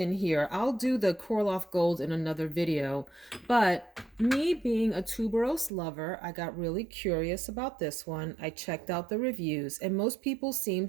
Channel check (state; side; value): drops out; left; at 5.7 s